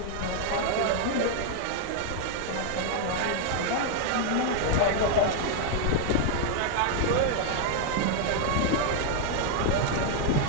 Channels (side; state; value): both; different; correlation 0.00